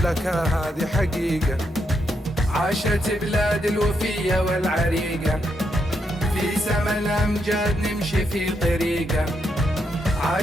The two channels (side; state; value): both; normal; correlation 0.80